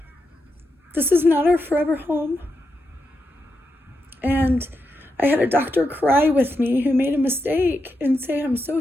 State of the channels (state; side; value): normal; both; correlation 0.86